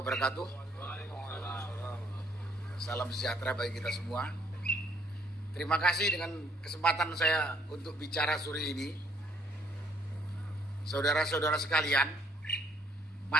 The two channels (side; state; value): both; normal; correlation 0.65